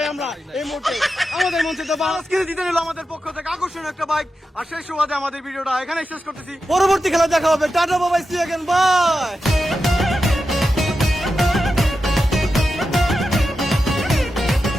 আমরা এই মুহূর্তে। আমাদের মঞ্চে তো মহারাজ কিন্তু জিতে নিল আমাদের পক্ষ থেকে আকর্ষণীয় একটা বাইক। আর সেই সুবাদে আমাদের ভিডিওটা এখানে শেষ করতেছি। পরবর্তী খেলা দেখা হবে। Tata, bye, see you again, by.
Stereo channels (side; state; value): both; normal; correlation 0.90